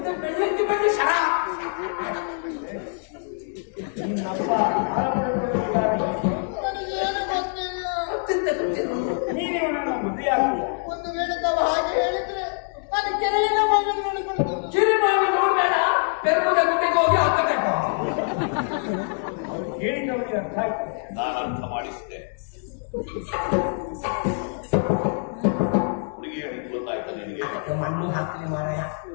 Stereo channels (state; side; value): silent; right; 62 dB below the other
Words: ಬೆಳ್ಳಿ ಶರ ನಿನ್ನಪ್ಪ ಹಾಲು ಪಡೆದುಕೊಂಡಿದ್ದಾರೆ. ನೀನು ಇವನನ್ನು ಮದುವೆ ಆಗ್ತೀಯ? ಒಂದು ವೇಳೆ ತಾವು ಹಾಗೆ ಹೇಳಿದ್ರೆ ನಾನು ಕೆರೆಯಿಂದ ಮಗನ ನೋಡಿಕೊಂಡು ಕಿರಿಮಾವಿ ನೋಡ್ಬೇಡ, ಬೆರ್ಮುದ ಗುಡ್ಡೆಗೆ ಹೋಗಿ ಹಾಕಬೇಕು. ಅವ್ರು ಹೇಳಿದವರಿಗೆ ಅರ್ಥ ಆಗ್ತದೆ. ನಾನು ಅರ್ಥ ಮಾಡಿಸಿದೆ. ಹುಡುಗಿ ಹೇಳಿದ್ದು ಗೊತ್ತಾಯ್ತಾ ನಿನಗೆ? ಮಣ್ಣು ಹಾಕ್ಲಿ ಮಾರಾಯ,